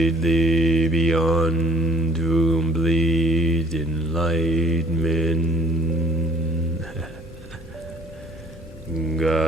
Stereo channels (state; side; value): normal; both; correlation 0.56